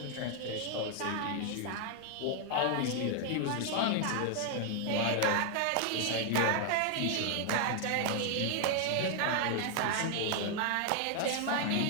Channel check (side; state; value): both; different; correlation 0.00